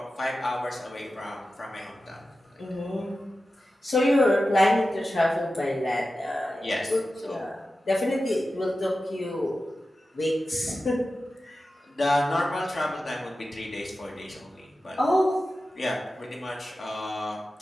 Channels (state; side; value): normal; both; correlation 0.93